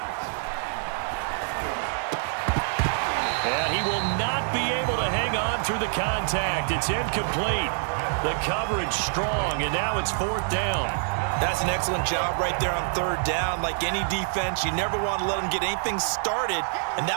And he will not be able to hang on through the contact. It's incomplete. The coverage strong, and now it's 4th down. That's an excellent job right there on 3rd down. Like any defense, you never want to let them get anything started, and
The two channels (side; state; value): left; silent; digital silence